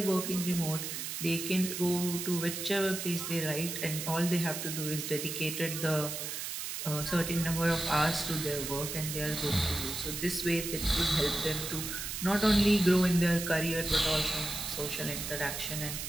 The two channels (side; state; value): right; noise; hiss, 5 dB below the sound